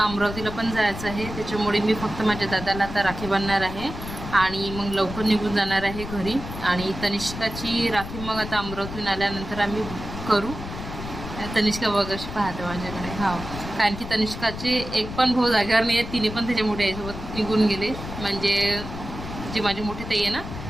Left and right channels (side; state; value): left; noise; rumble, 9 dB below the sound